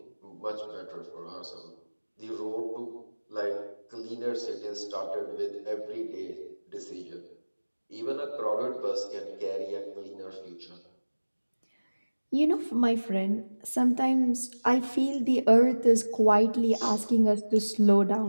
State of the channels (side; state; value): both; inverted; correlation -1.00